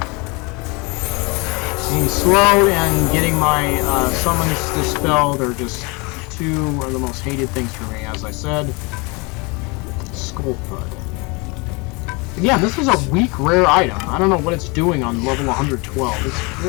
Being slow and getting my summons dispelled are just two of the most hated things for me, as I said. Skull Thud. Yeah, this is a weak rare item. I don't know what it's doing on level 112. It's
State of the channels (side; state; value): right; quieter; 28.3 dB